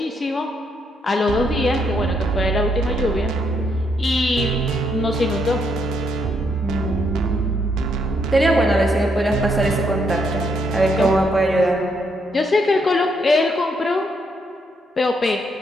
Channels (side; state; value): both; normal; correlation 0.75